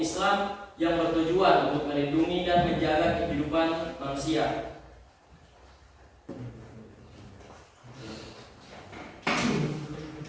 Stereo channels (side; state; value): both; identical; correlation 1.00